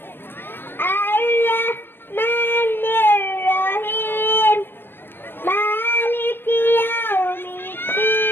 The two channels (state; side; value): late; right; 0.099 ms